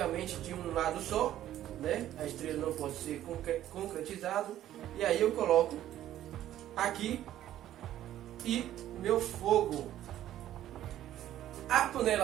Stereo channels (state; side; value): quieter; left; 12.5 dB